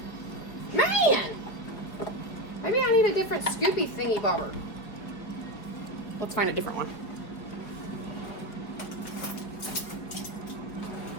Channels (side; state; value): right; late; 4.8 ms